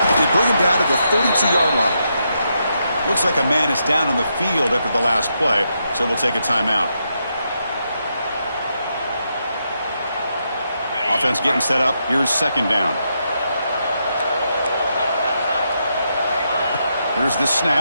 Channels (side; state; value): both; inverted; correlation -0.81